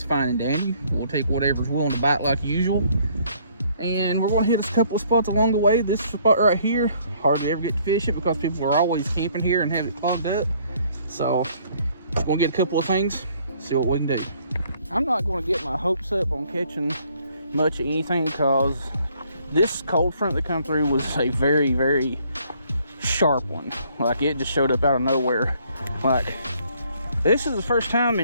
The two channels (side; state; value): both; inverted; correlation -0.63